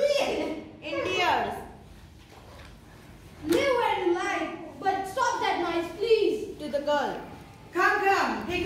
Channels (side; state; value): both; identical; correlation 1.00